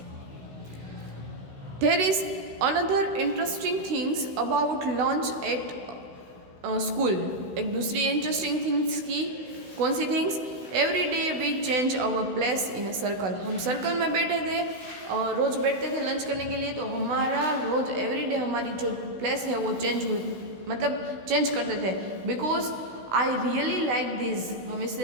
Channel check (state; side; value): late; left; 16 ms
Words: There is another interesting things about lunch at school, एक दूसरी इंटरेस्टिंग थिंग्स की, कौन सी things? Every day we change our place in a circle, हम सर्कल में बैठे थे, रोज़ बैठते थे लंच करने के लिए, तो हमारा रोज़ एवरी डे हमारी जो प्लेस है वो चेंज हुई, मतलब चेंज करते थे। Because I really like this, हम